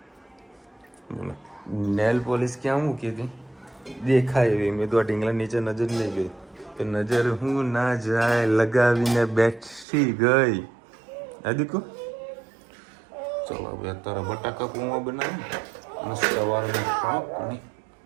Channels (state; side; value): drops out; left; at 9.9 s